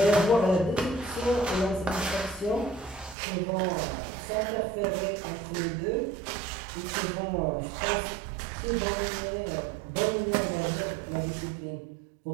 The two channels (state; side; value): drops out; left; at 3.2 s